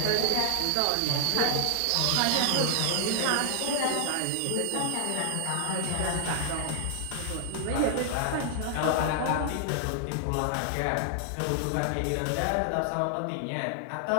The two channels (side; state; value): both; different; correlation 0.00